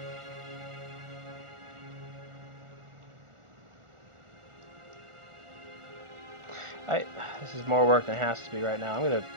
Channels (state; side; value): late; left; 1.4 ms